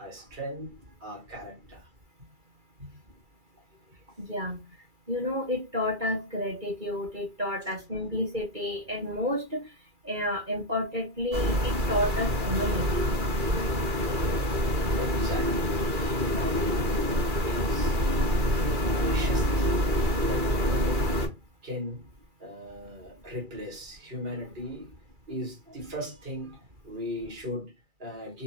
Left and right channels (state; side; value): late; left; 2.3 ms